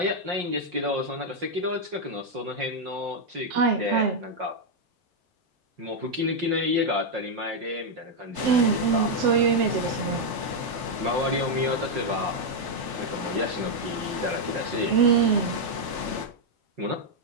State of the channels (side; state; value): left; late; 3.4 ms